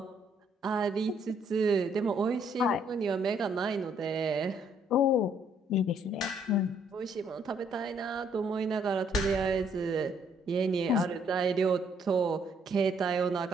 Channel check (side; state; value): both; normal; correlation 0.67